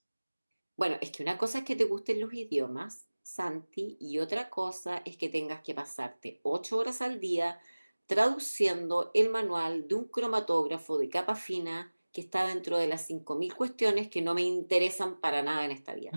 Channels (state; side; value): inverted; both; correlation -1.00